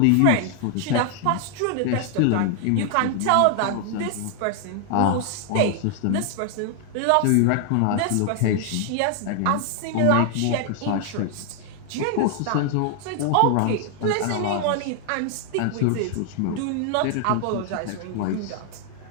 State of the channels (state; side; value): different; both; correlation 0.00